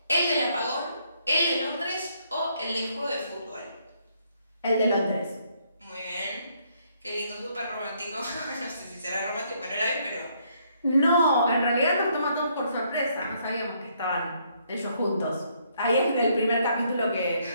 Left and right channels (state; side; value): inverted; both; correlation -0.70